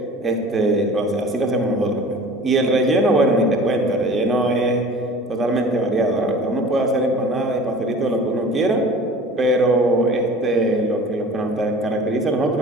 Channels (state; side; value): normal; both; correlation 0.43